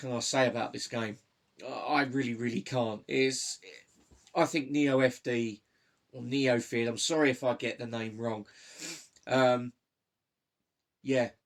I say about this game? I really, really can't. I think NeoFD or Neofid, I'm sorry if I get the name wrong. Yeah,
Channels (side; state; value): both; identical; correlation 1.00